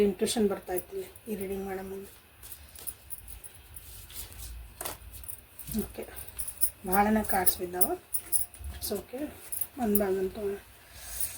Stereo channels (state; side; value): identical; both; correlation 1.00